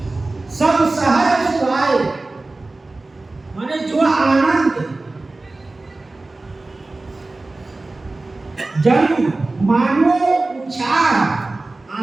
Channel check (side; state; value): left; quieter; 3.2 dB